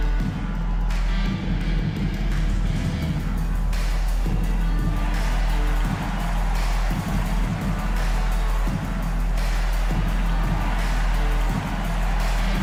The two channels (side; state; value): both; identical; correlation 1.00